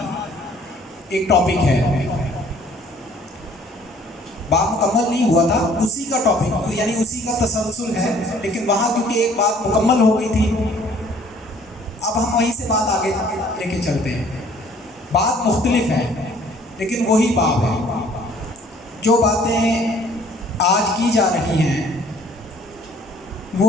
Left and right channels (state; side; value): normal; both; correlation 0.57